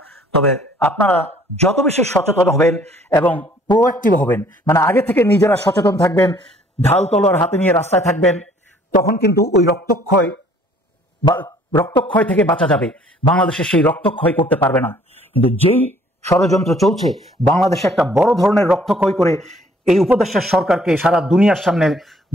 তবে আপনারা যত বেশি সচেতন হবেন এবং প্রোঅ্যাক্টিভ হবেন, মানে আগে থেকে নিজেরা সচেতন থাকবেন, ঢাল তলোয়ার হাতে নিয়ে রাস্তায় থাকবেন, তখন কিন্তু ওই রক্তক্ষয় থেকে বাঁচা যাবে। বাংলাদেশে সেই রক্তক্ষয় করতে পারবে না। কিন্তু যেই ষড়যন্ত্র চলছে, বাংলাদেশে একটা বড় ধরনের রক্তক্ষয় করে এই উপদেষ্টা সরকারকে সারা দুনিয়ার সামনে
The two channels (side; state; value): both; normal; correlation 0.59